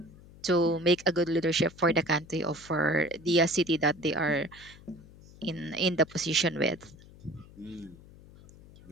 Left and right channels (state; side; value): noise; left; hum, 21 dB below the sound